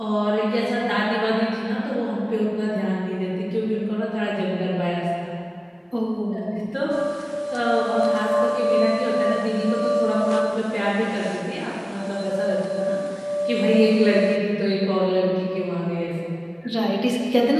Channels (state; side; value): identical; both; correlation 1.00